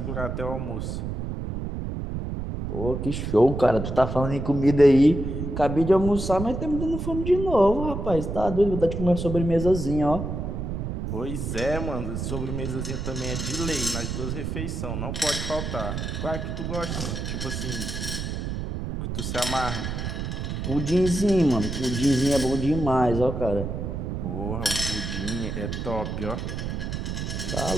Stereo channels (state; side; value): noise; right; rumble, 4 dB below the sound